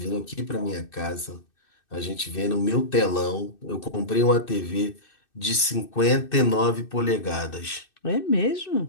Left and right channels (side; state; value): right; late; 2.6 ms